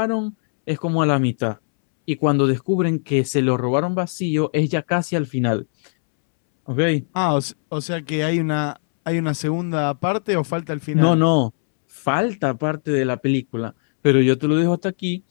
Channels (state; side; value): silent; right; 65 dB below the other